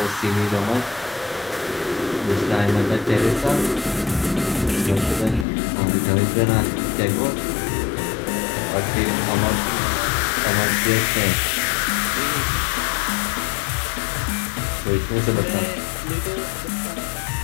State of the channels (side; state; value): right; drops out; at 5.5 s